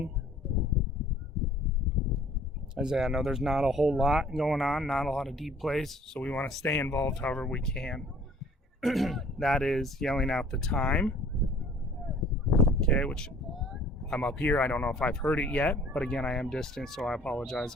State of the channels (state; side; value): normal; both; correlation 0.53